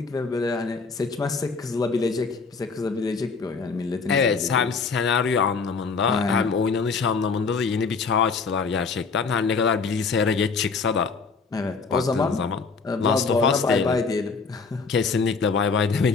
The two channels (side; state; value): right; quieter; 4.9 dB